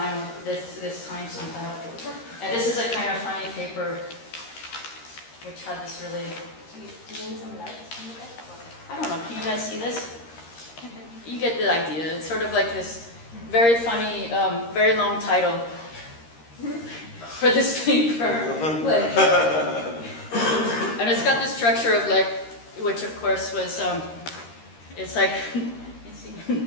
this time somehow. And this is a kind of funny paper, which had this really... Do you need some light on the back? I don't know, can you guys see this? You get the idea. It's sort of like this very funny, very long title for this paper. And it's got the structure of like, which of course was, it's like,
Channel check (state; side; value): late; right; 13 ms